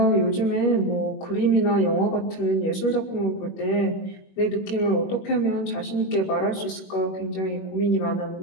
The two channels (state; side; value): late; right; 21 ms